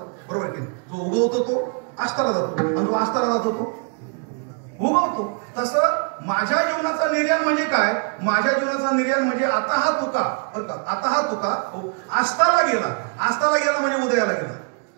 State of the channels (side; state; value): left; quieter; 38.9 dB